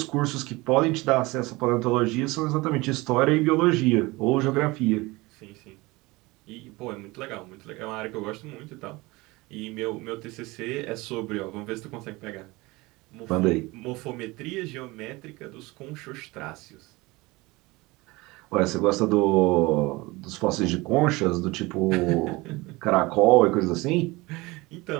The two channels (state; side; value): quieter; left; 22.5 dB